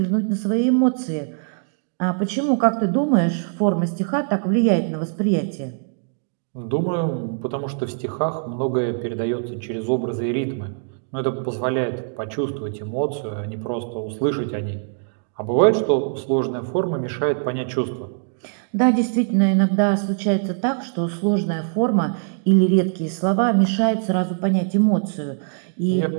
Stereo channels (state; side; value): silent; left; digital silence